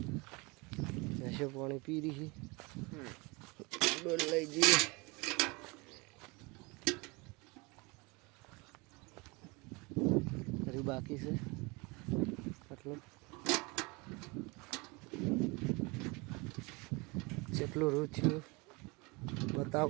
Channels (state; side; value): quieter; left; 26.8 dB